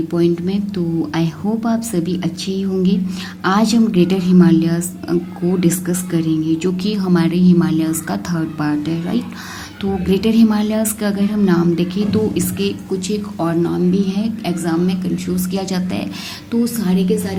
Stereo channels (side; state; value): both; identical; correlation 1.00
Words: पॉइंट में। तो आई होप आप सभी अच्छे ही होंगे। आज हम ग्रेटर हिमालयस को डिस्कस करेंगे, जो कि हमारे हिमालयस का थर्ड पार्ट है, राइट। तो ग्रेटर हिमालयस का अगर हम नाम देखें तो इसके कुछ एक और नाम भी है, एग्ज़ाम में कंफ्यूज किया जाता है। तो सारे के